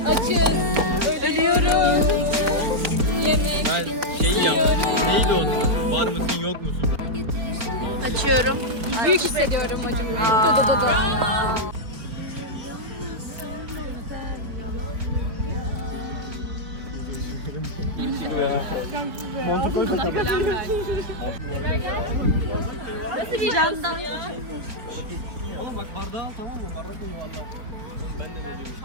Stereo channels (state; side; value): late; left; 4.4 ms